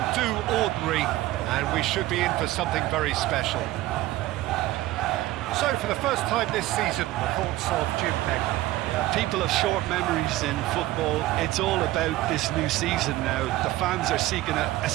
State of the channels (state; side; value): quieter; left; 16.7 dB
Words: do ordinary, and we should be in for something very special. So, for the first time this season, the thoughts of Jim Pegg. People have short memories in football. It's all about this new season now. The fans are seeking a